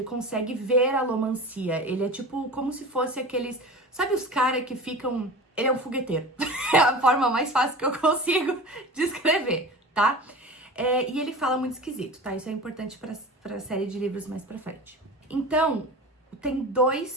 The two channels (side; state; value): both; normal; correlation 0.34